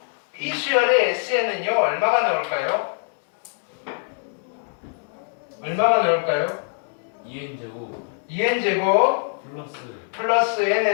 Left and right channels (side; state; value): right; silent; 57 dB below the other